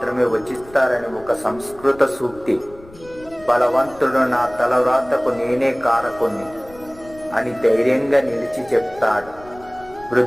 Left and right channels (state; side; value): noise; left; rumble, 22 dB below the sound